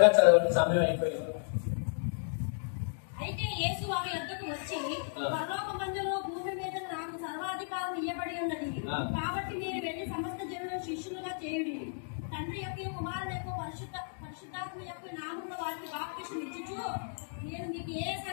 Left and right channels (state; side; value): silent; right; digital silence